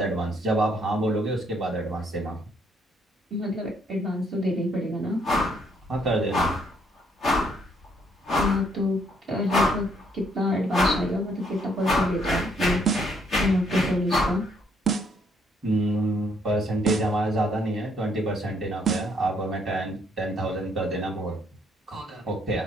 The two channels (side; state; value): both; normal; correlation 0.69